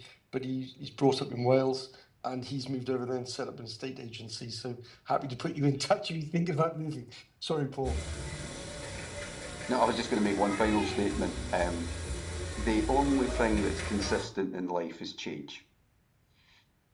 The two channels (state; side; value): identical; both; correlation 1.00